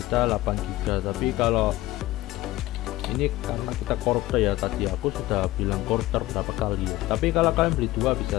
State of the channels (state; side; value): quieter; right; 17.5 dB